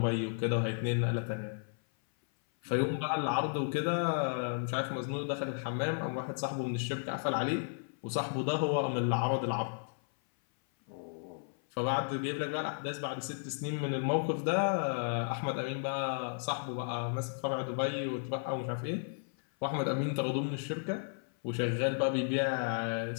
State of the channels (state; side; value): silent; right; 55 dB below the other